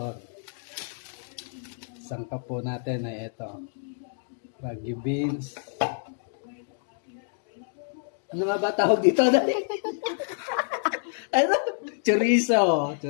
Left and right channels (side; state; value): right; silent; digital silence